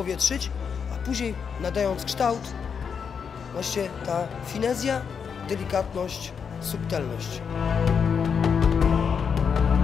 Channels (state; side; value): quieter; right; 6.6 dB